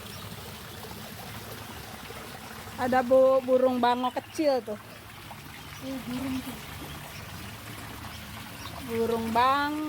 Ada burung bango kecil tuh. Burung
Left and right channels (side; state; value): both; identical; correlation 1.00